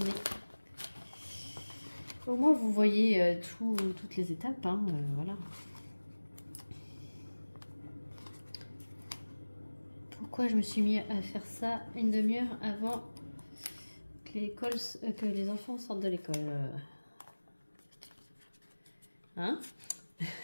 Au moins vous voyez toutes les étapes, hein, voilà. Pourquoi je me suis mis à faire ça une demi-heure avant que les enfants sortent de l'école? Hein?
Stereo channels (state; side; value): inverted; both; correlation -1.00